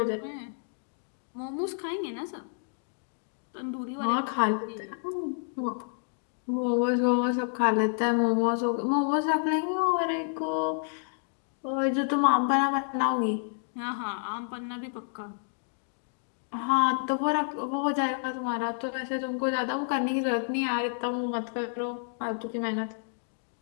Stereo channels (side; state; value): right; silent; digital silence